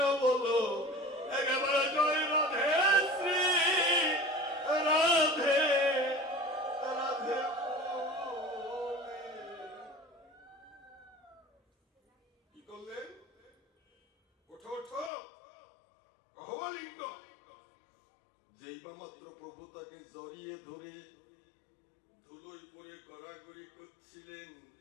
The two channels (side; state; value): right; drops out; at 15.1 s